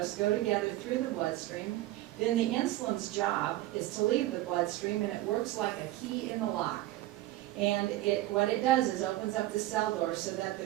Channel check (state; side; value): quieter; left; 16.1 dB